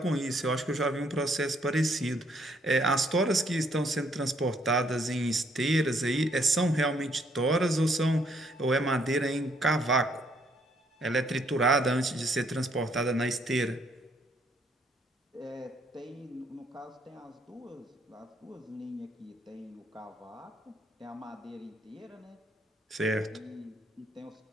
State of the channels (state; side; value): normal; both; correlation 0.68